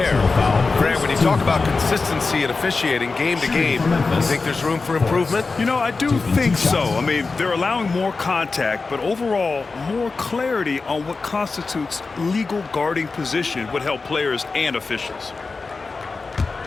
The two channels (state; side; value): quieter; right; 4.1 dB